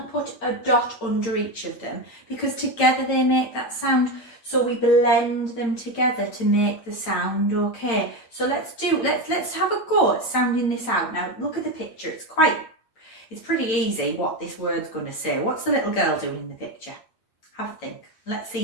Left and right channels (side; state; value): right; late; 8.8 ms